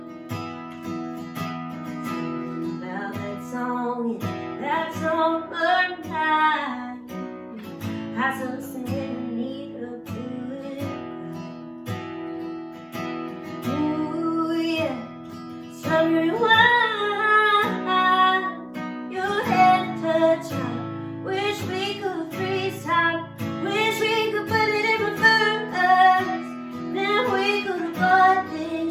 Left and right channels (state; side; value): identical; both; correlation 1.00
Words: About that song, yeah, that song burned night. I so sad need a good cry. Ooh, yeah, strawberry wine, your head touch mine. Wish we could freeze time. Wish we could put it in reverse. Then we could go